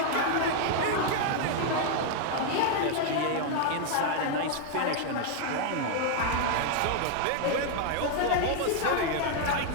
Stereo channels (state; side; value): different; both; correlation 0.00